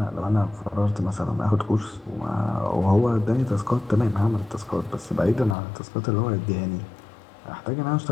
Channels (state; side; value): drops out; right; at 5.6 s